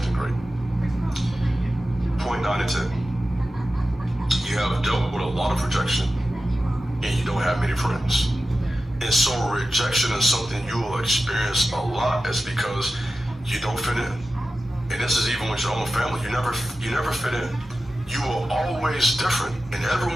great. Point 9 and 10. You have dealt with a lot of rejection, and you don't have many friends. And so rejection is something you will experience a lot is because you don't fit in. And this is even with your own family. You never fit in. You were always different, and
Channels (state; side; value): normal; both; correlation 0.93